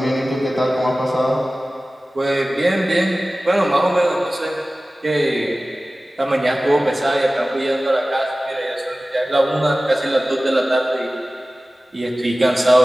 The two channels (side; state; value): both; normal; correlation 0.97